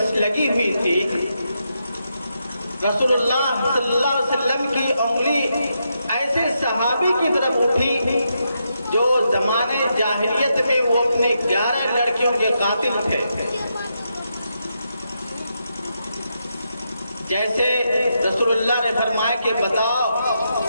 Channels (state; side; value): inverted; both; correlation -0.83